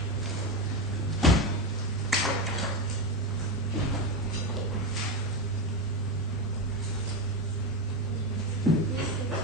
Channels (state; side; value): normal; both; correlation 0.15